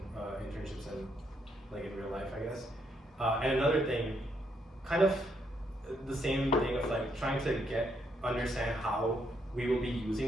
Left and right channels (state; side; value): normal; both; correlation 0.75